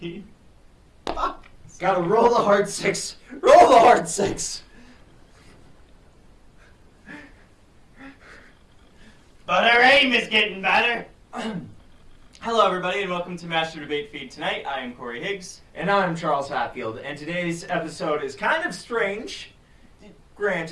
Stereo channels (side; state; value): both; identical; correlation 1.00